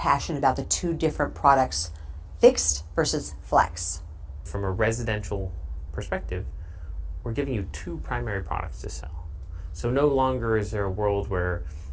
about the two different products, fixed versus flex? From a residential perspective, we're giving you two primary products to sell. So no longer is there a world where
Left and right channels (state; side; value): identical; both; correlation 1.00